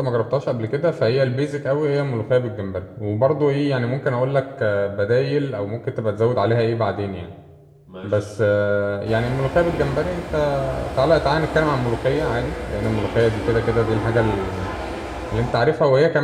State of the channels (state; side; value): identical; both; correlation 1.00